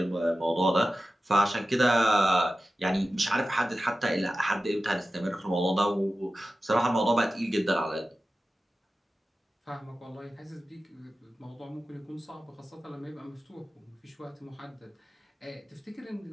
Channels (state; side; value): normal; both; correlation 0.94